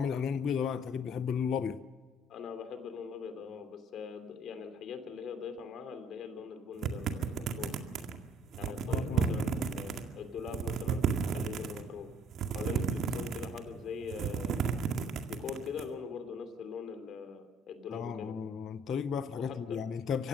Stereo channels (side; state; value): both; normal; correlation 0.59